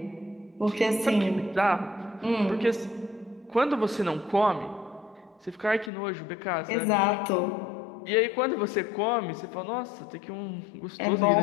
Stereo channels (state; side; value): drops out; right; at 5.9 s